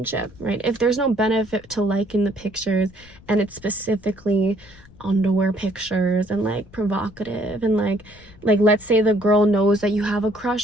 right? If there's no benefit to liking the pictures, and it's specifically underwear pictures and like provocative, and like let's say the girl knows that you have a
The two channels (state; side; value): noise; left; rumble, 24 dB below the sound